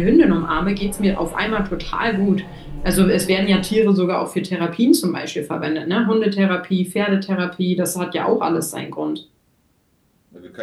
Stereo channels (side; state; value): both; identical; correlation 1.00